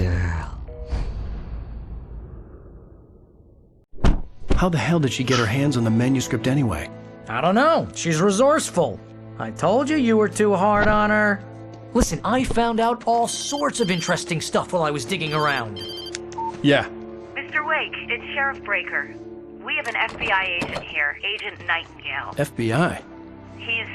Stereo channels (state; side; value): identical; both; correlation 1.00